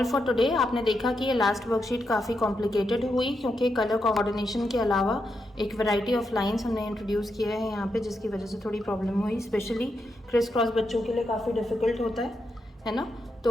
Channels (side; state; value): both; normal; correlation 0.84